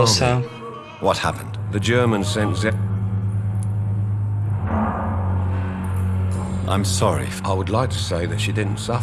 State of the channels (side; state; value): both; identical; correlation 1.00